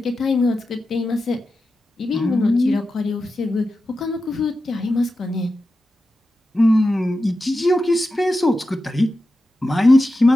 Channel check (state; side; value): normal; both; correlation 0.91